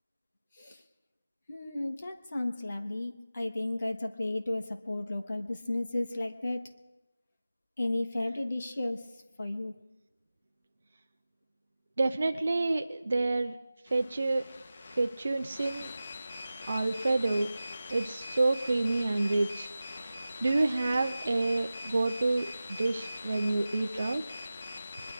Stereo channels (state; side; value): inverted; both; correlation -0.96